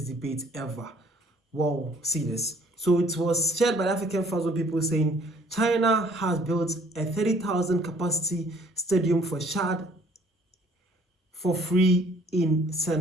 debate ever. Well, see this. So it was shared by the African Thousand people saying China has built a 30,000 capacity stadium for Chad for free in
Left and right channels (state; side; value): normal; both; correlation 0.58